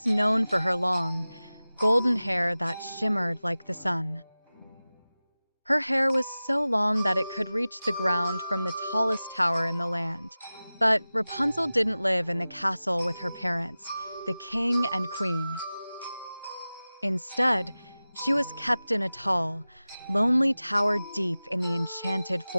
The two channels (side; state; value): both; inverted; correlation -0.97